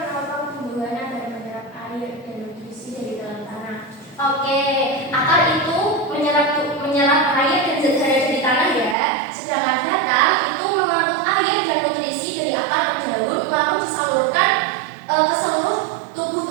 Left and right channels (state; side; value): drops out; left; at 9.0 s